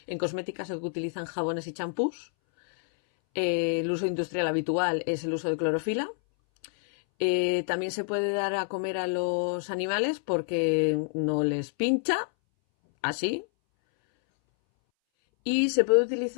En cosmética se utilizan jabones y champús. El uso industrial habitual es el uso de clorofila. También se puede dar a comer a los animales porque no les pincha, así. Y se puede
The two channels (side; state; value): right; silent; 59 dB below the other